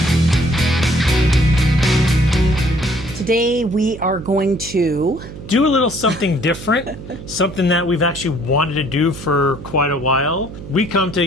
Today we are going to do a little something different, something that we've actually wanted to do for quite a while. We come to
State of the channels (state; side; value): noise; right; hum, 13 dB below the sound